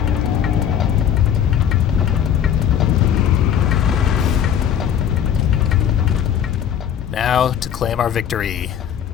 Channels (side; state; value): right; quieter; 9.2 dB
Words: Now to claim our victory